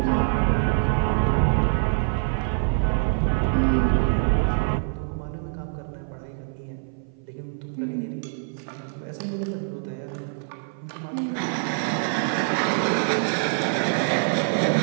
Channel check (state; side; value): silent; left; 57 dB below the other